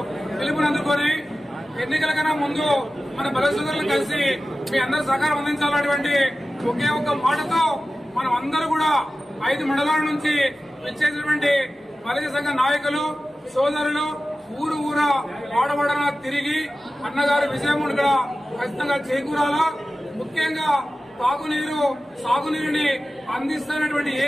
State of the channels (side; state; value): both; normal; correlation 0.95